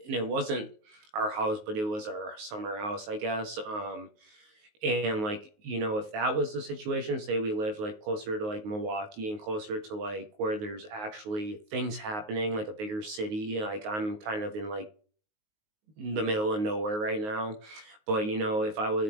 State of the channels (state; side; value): late; left; 19 ms